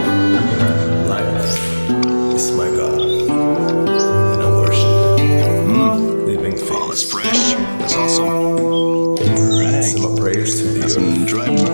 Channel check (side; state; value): both; inverted; correlation -1.00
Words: Life is my God, and I worship living things. Oh, that's fresh. That's awesome. Right. Some prayers to the some dry